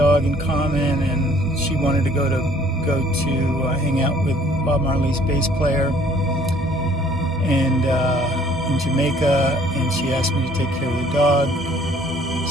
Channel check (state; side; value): normal; both; correlation 0.58